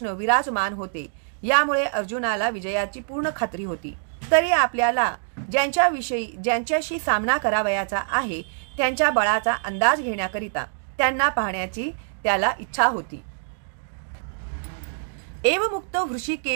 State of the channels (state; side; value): silent; left; digital silence